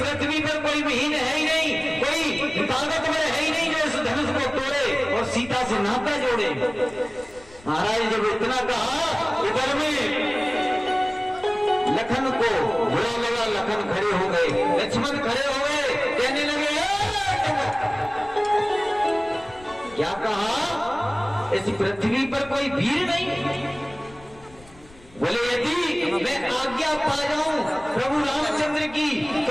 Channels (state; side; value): noise; left; rumble, 23 dB below the sound